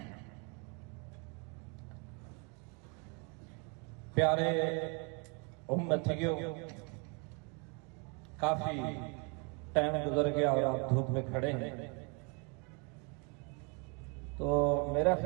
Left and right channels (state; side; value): quieter; left; 33.1 dB